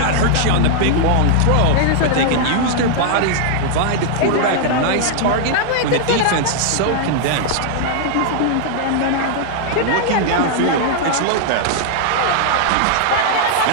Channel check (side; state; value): both; different; correlation 0.00